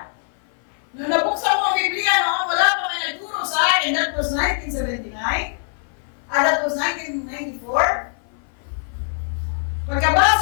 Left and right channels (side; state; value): right; silent; 57 dB below the other